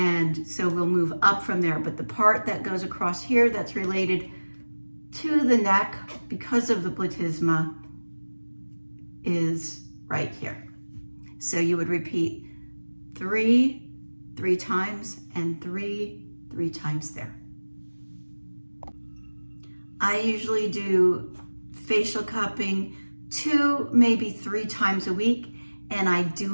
so we'll move up from there, but the part that goes across here that's related to the neck because of the platysma is right here. So you would repeat 3 times, and 3 times there. I usually do facial cupping 2, maybe 3 times a week, and I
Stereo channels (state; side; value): inverted; both; correlation -1.00